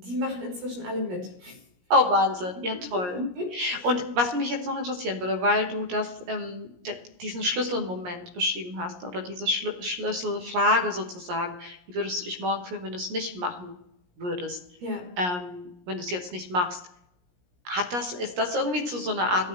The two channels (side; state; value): left; late; 17 ms